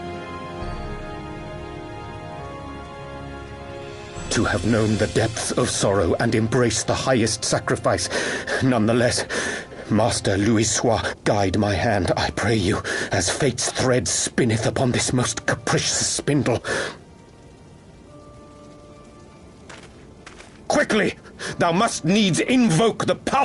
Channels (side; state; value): both; identical; correlation 1.00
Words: to have known the depths of sorrow and embraced the highest sacrifice. Nonetheless, Master Louis-Sois, guide my hand, I pray you, as fate's thread spinneth upon this most capricious spindle. Quickly! Thou must needs invoke the